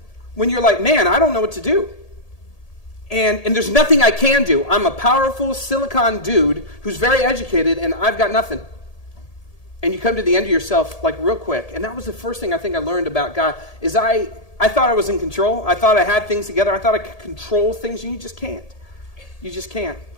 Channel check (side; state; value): right; late; 1.8 ms